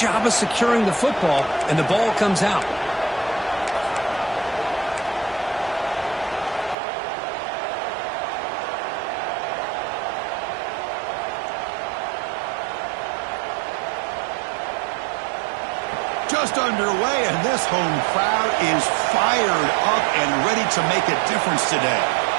of securing the football, and the ball comes out. Just underway, and this home crowd is fired up and ready to make a difference today.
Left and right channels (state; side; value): drops out; left; at 6.8 s